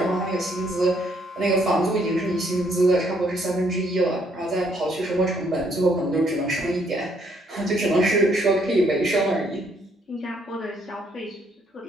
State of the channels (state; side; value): normal; both; correlation 0.69